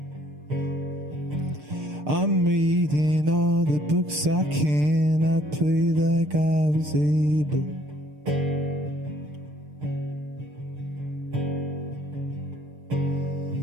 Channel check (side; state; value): left; late; 6.7 ms